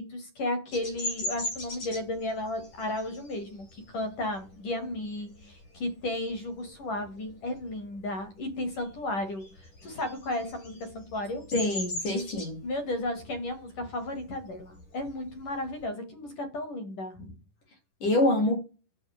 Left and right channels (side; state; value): right; late; 10 ms